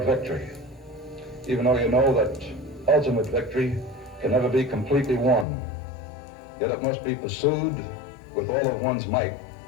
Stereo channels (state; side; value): drops out; right; at 5.5 s